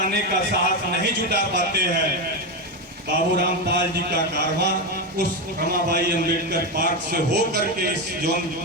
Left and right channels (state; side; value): normal; both; correlation 0.11